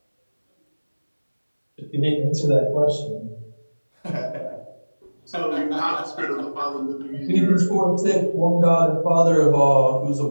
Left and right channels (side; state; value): both; inverted; correlation -1.00